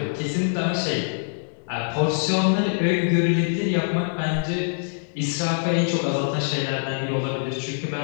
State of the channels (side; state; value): right; silent; digital silence